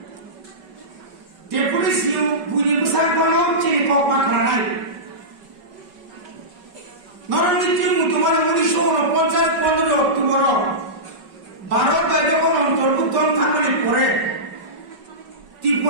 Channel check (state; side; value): late; left; 5.3 ms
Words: Deputi siu bunyi besar kono, sini kau pakranai. Norang itu mutuman munisho no poncat pondro tumoro. Barat kaje kono terbuton thamani pore.